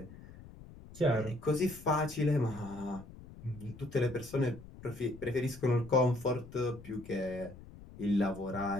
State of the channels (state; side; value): noise; left; rumble, 17 dB below the sound